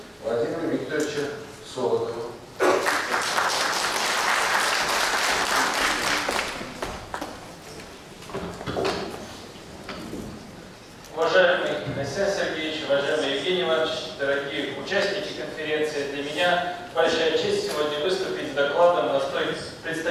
Владимиру Викторовичу Солодову. Уважаемый Александр Сергеевич, уважаемый Евгений Иванович, дорогие участники конференции, для меня большая честь сегодня выступить с докладом на столь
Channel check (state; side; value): identical; both; correlation 1.00